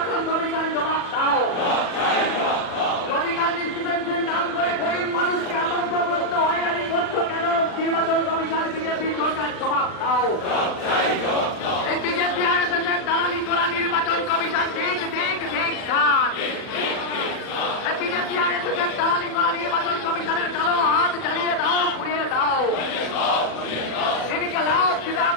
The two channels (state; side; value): late; right; 39 ms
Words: কমিশন জবাব দাও। লজিক্যাল ডিসক্রিপেন্সির নাম করে গরিব মানুষকে আতঙ্কগ্রস্ত হয়রানি করছো কেন নির্বাচন কমিশন বিজেপি সরকার জবাব দাও। এই বিজেপি আরএসএস এর দালালি করা নির্বাচন কমিশন ঠিক ঠিক ঠিক খান। এই বিজেপি আরএসএস এর দালালি করা নির্বাচন কমিশনের কালো হাত জ্বালিয়ে দাও, পুড়িয়ে দাও। এদিকে লাভ